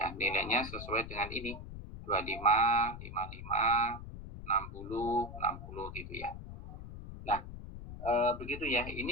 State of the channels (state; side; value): noise; left; rumble, 11 dB below the sound